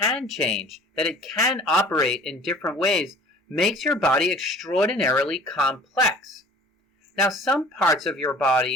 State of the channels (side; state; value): both; normal; correlation 0.49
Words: change, that it can operate in different ways, makes your body extraordinarily complex. Now, some parts of your